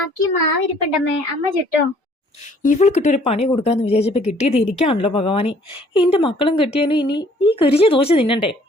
മാവിരിപ്പുണ്ടമ്മേ, അമ്മ ചുട്ടോ? ഇവൾക്കിട്ടൊരു പണി കൊടുക്കാന്ന് വിചാരിച്ചപ്പോ കിട്ടിയത് എനിക്കാണല്ലോ ഭഗവാനെ. എന്റെ മക്കളും കെട്ടിയാലും ഇനി ഈ കരിഞ്ഞ ദോശ തിന്നണ്ടേ?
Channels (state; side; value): normal; both; correlation 0.59